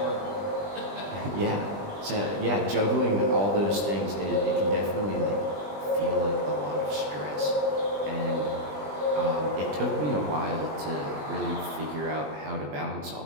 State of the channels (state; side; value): late; left; 20 ms